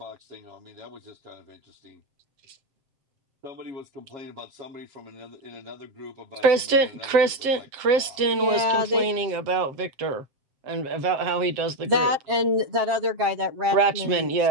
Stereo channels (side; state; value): left; late; 7.5 ms